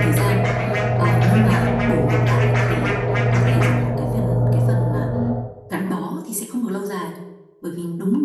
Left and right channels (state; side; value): identical; both; correlation 1.00